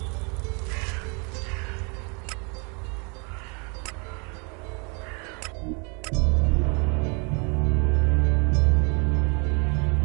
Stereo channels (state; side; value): quieter; left; 33.4 dB